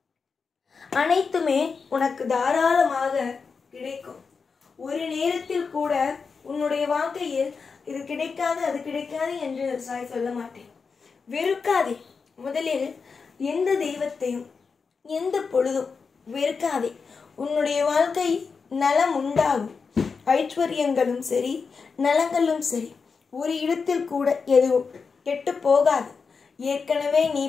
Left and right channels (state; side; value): quieter; right; 5.2 dB